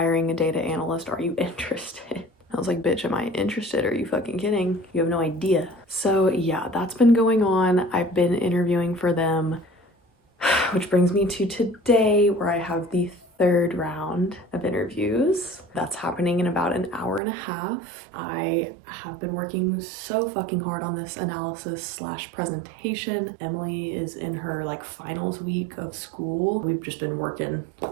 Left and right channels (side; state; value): left; drops out; at 17.2 s